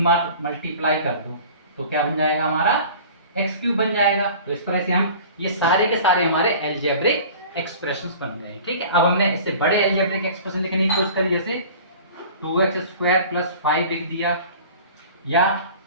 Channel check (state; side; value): inverted; both; correlation -0.43